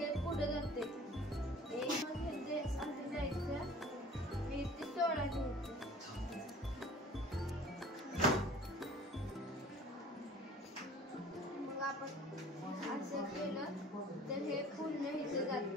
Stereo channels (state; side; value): normal; both; correlation 0.47